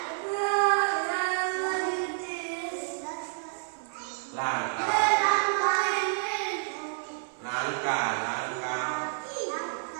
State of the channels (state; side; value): silent; left; 58 dB below the other